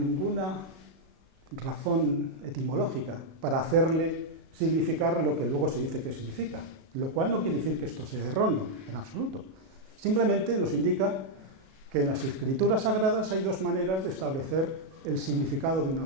razón etimológica para hacerle significar lo que luego se dice que significa, lo cual no quiere decir que esto sea erróneo, en absoluto. Simplemente nos indica que en las escrituras sagradas hay dos maneras de establecer el significado de una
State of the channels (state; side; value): late; left; 37 ms